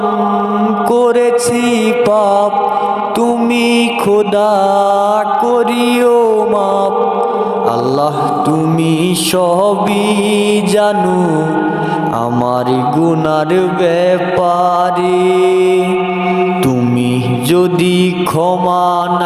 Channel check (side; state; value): both; identical; correlation 1.00